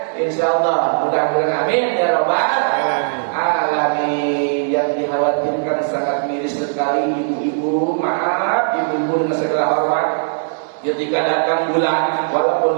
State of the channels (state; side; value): silent; left; digital silence